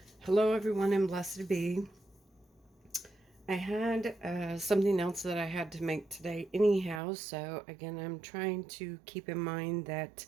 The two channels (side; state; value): left; drops out; at 7.0 s